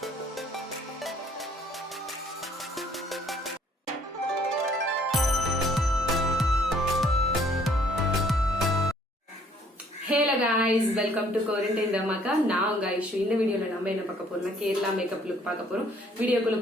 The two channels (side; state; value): both; normal; correlation 0.62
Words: guys, welcome to Quarantine Dhamaka. நான் உங்க ஐஷு. இந்த வீடியோல நம்ம என்ன பார்க்க போறோம்னா கேரளா மேக்கப் லுக் பார்க்க போறோம். வீடியோக்குள்ள